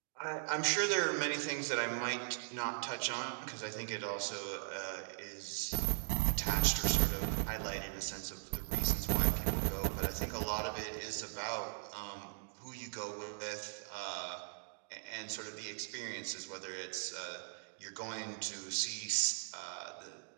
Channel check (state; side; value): silent; left; digital silence